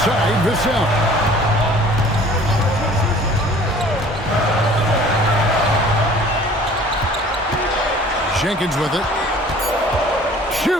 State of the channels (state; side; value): normal; both; correlation 0.50